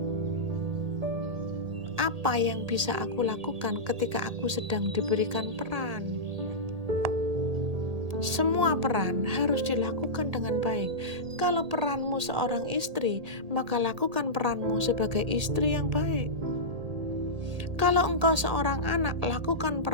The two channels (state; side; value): late; left; 1.8 ms